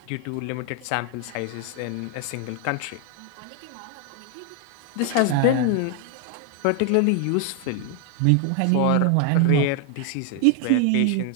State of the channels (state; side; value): different; both; correlation 0.00